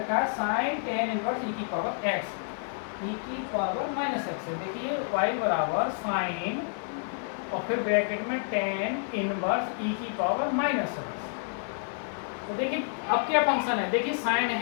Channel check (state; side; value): silent; right; digital silence